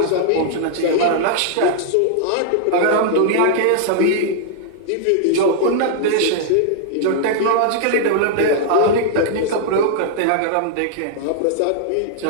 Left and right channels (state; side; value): different; both; correlation -0.01